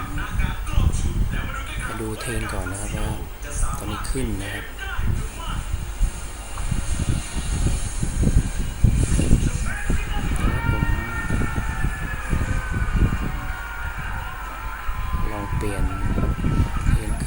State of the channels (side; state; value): both; identical; correlation 1.00